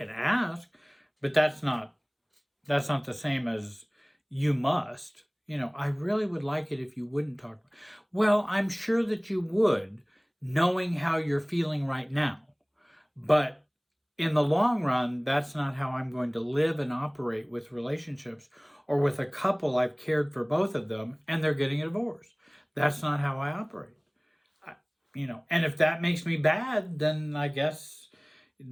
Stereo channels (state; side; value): identical; both; correlation 1.00